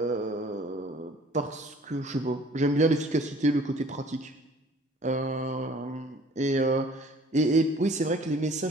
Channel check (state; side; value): normal; both; correlation 0.53